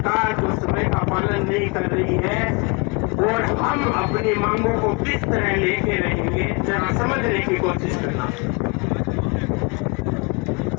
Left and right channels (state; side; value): quieter; right; 30.7 dB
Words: जो समय का पालन नहीं कर रही है और हम अपनी मांगों को किस तरह लेके रहेंगे, जरा समझने की कोशिश करना।